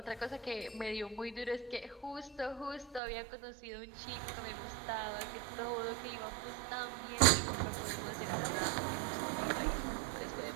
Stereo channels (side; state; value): left; drops out; at 3.0 s